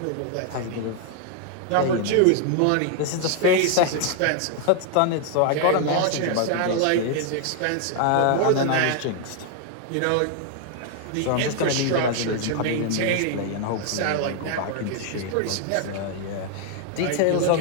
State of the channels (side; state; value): both; different; correlation 0.00